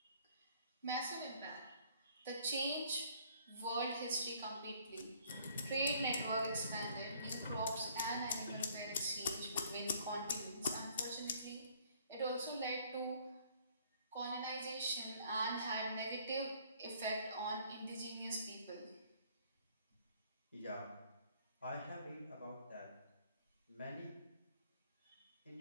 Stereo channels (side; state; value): both; inverted; correlation -0.60